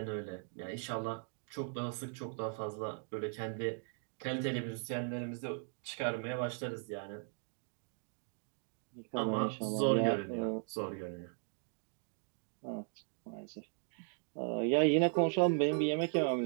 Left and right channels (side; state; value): left; silent; 52 dB below the other